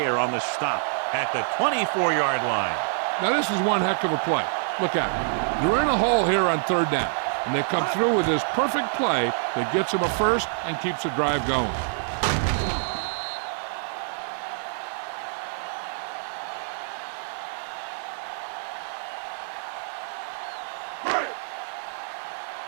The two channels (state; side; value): silent; left; 57 dB below the other